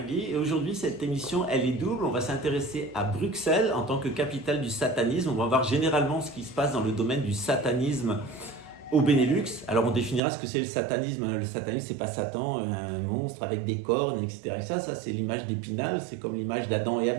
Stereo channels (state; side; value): drops out; left; at 10.2 s